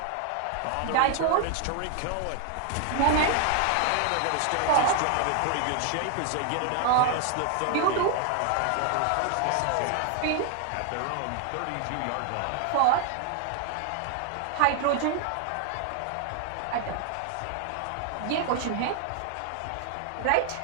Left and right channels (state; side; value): different; both; correlation 0.00